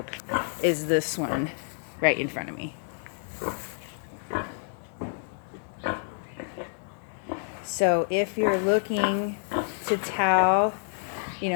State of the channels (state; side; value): silent; right; digital silence